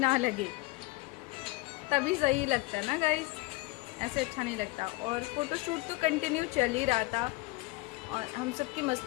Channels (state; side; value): quieter; right; 22.0 dB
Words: लगे, तभी सही लगता है ना गाइस, ऐसे अच्छा नहीं लगता। और फ़ोटोशूट तो कंटिन्यू चल ही रहा था, और हम सब की